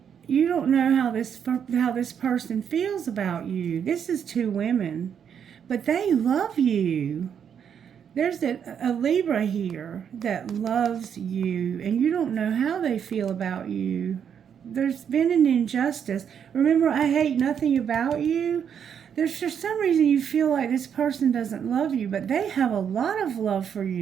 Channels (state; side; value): quieter; left; 8.0 dB